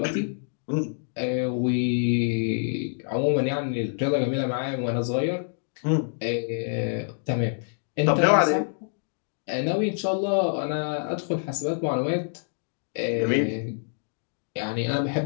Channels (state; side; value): silent; right; digital silence